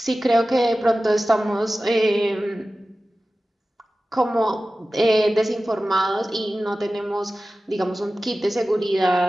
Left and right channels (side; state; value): both; normal; correlation 0.95